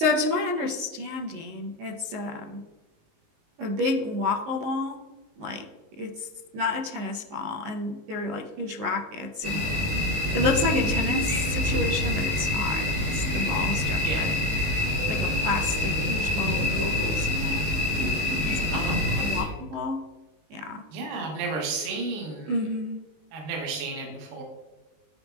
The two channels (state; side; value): late; left; 19 ms